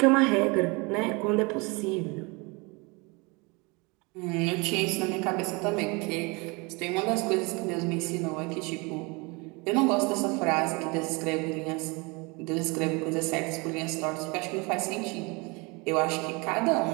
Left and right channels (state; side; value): quieter; left; 28.0 dB